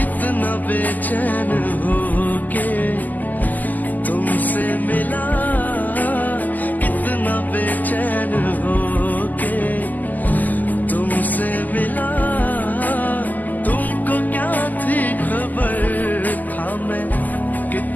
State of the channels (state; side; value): late; right; 0.083 ms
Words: कितना बेचैन हो के तुमसे मिला, कितना बेचैन हो के तुमसे मिला। तुमको क्या थी खबर, था मैं